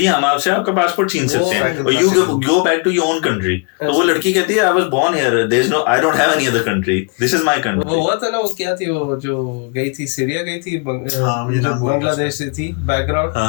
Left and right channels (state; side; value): quieter; right; 35.3 dB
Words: ہم آپ سے آپ کا پاسپورٹ چھین سکتے ہیں اور you go back to your own country. تو وہ لڑکی کہتی ہے I was born here, there is no, I don't have any other country, this is my country. وہ ہوا تھا نا, وہ کیا تھی, وہ جو گئی تھی سیریا گئی تھی, بنگلہ دیش سے تھی بیک